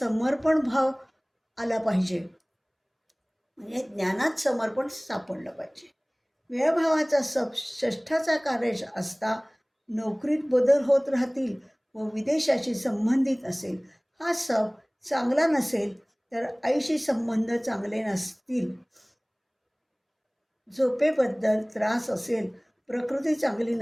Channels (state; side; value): identical; both; correlation 1.00